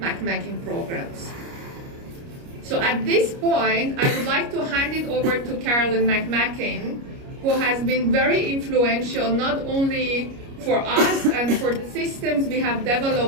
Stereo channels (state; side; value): late; left; 29 ms